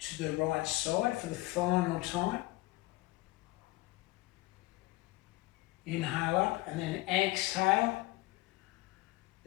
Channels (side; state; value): right; quieter; 20.0 dB